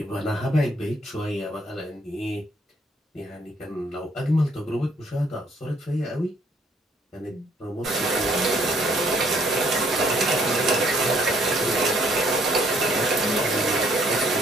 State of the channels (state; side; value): normal; both; correlation 0.65